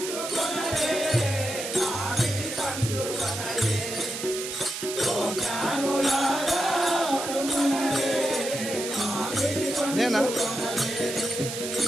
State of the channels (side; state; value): right; noise; hiss, 6 dB below the sound